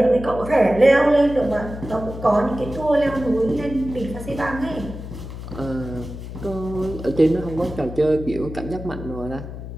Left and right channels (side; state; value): left; noise; hum, 10 dB below the sound